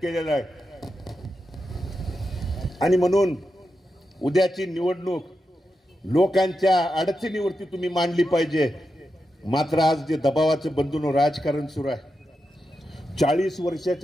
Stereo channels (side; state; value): both; normal; correlation 0.88